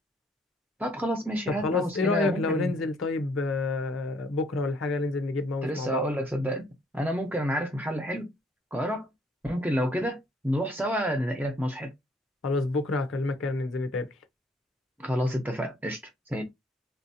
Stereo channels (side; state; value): both; normal; correlation 0.64